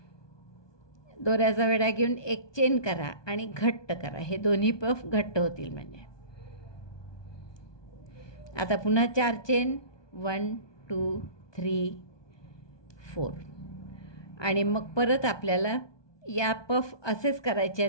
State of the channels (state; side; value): late; right; 1.2 ms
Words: दोऱ्याचा वेढा घेऊन एक चेन करा आणि घट्ट करा. हे दोन्ही पफ घट्ट होतील म्हणजे. आता पुन्हा 4 चेन 1 2 3 4. आणि मग परत आपल्याला या पफ असेच करायचे